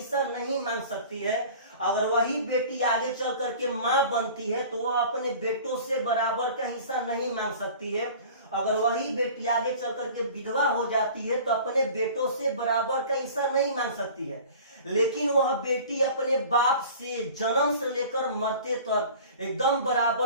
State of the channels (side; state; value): both; inverted; correlation -0.43